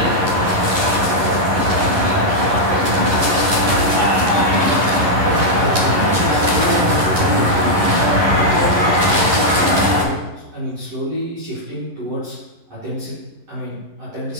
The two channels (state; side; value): late; left; 11 ms